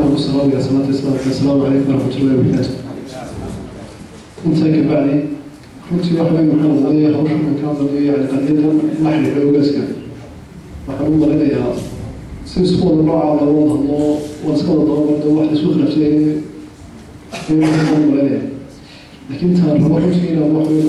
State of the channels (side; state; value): both; identical; correlation 1.00